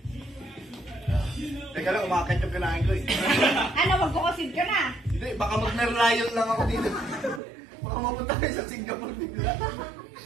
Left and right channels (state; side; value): drops out; left; at 7.4 s